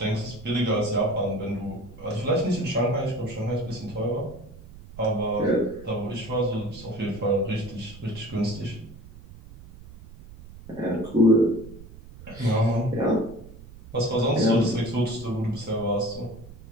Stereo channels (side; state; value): right; noise; rumble, 18 dB below the sound